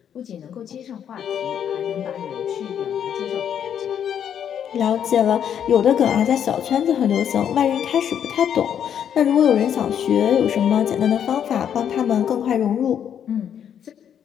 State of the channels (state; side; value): quieter; right; 8.9 dB